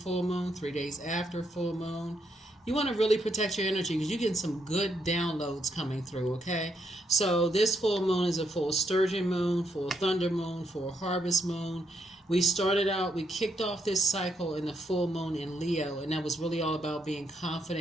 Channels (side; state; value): both; normal; correlation 0.76